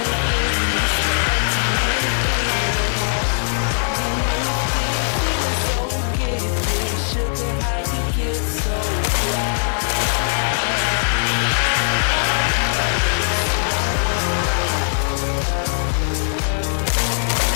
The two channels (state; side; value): silent; right; digital silence